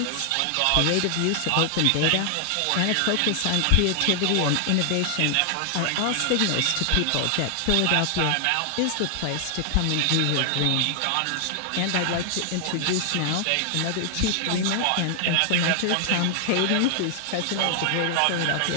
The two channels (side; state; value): both; different; correlation 0.00